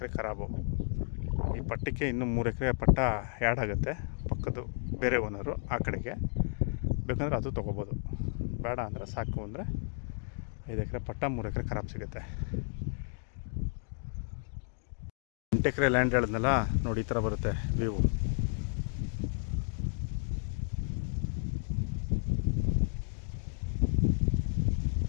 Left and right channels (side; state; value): right; silent; 56 dB below the other